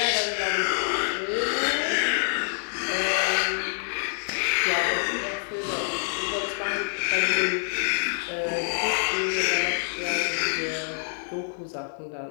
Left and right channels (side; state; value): right; silent; 57 dB below the other